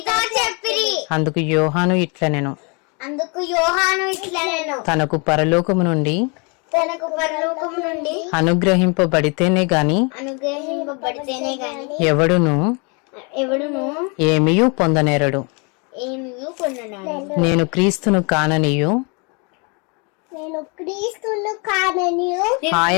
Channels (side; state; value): right; quieter; 32.7 dB